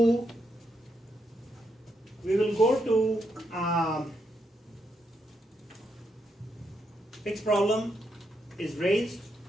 fixed problem is raised,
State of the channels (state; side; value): normal; both; correlation 0.80